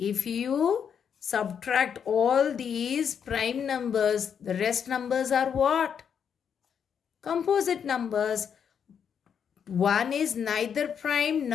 you subtract all these prime numbers, the rest numbers are what? Composite numbers. 1 is neither prime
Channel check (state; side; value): quieter; right; 7.6 dB